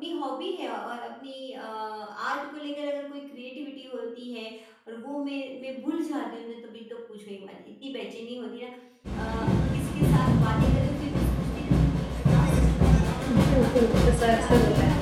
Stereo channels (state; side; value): identical; both; correlation 1.00